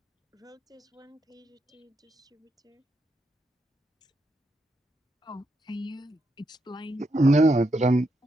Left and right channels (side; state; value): both; normal; correlation 0.81